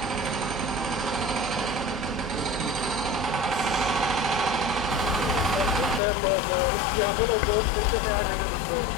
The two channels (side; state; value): right; drops out; at 6.0 s